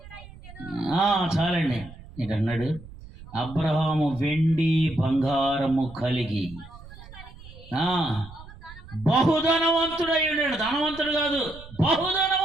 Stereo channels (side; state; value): right; noise; rumble, 18 dB below the sound